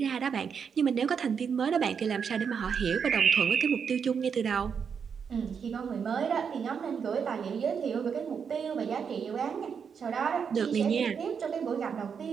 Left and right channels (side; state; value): left; quieter; 6.7 dB